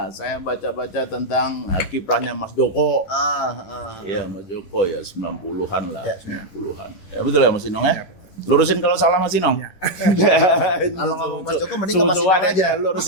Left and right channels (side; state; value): right; late; 11 ms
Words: Saya baca-baca tentang kiprahnya Mas Joko. Iya, Mas Joko ya 90-an lah, Ya. 90-an. Ya betul ya Mas Inong ya? Lurusin kalau salah Mas Inong. Kalau ngomong Mas Joko mending ke Mas Inong Susu-susu aja.